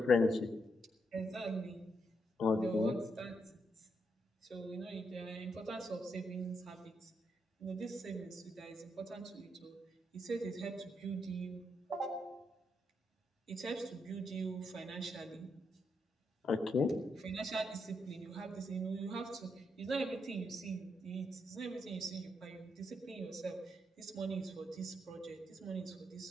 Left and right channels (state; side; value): normal; both; correlation 0.79